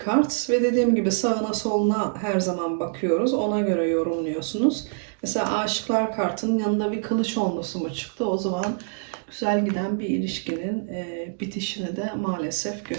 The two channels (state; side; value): silent; left; digital silence